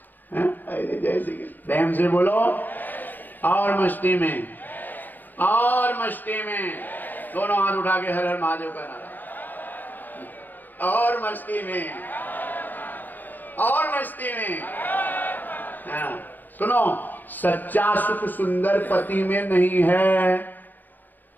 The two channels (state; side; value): late; right; 0.090 ms